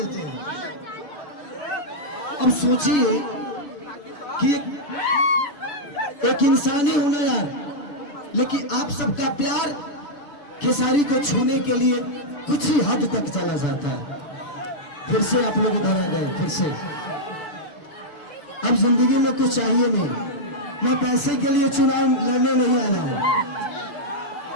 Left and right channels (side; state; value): right; late; 6.8 ms